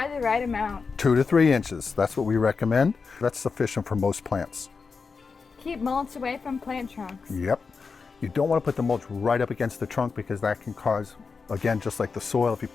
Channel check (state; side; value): quieter; right; 5.0 dB